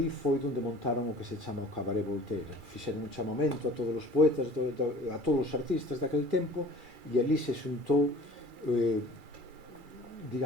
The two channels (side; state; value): left; late; 2.3 ms